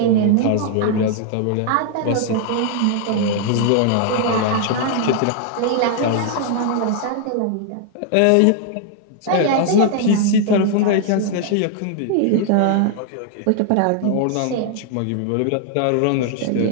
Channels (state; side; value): different; both; correlation 0.00